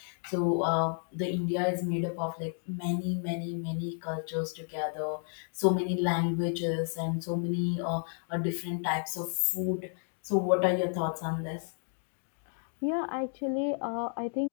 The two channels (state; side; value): silent; right; 57 dB below the other